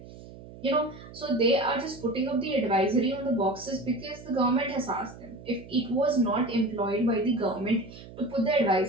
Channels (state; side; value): noise; right; hum, 17 dB below the sound